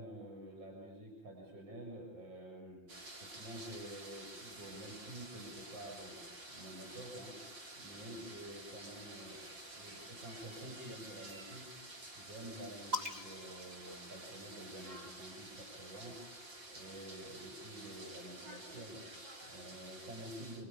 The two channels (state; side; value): late; left; 5.7 ms